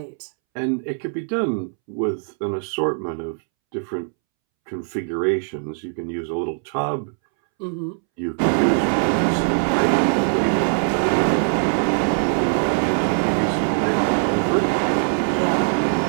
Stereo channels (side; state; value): left; silent; 65 dB below the other